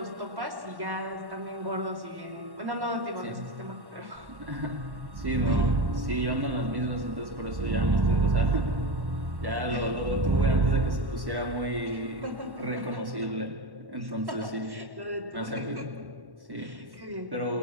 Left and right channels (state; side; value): late; left; 1.1 ms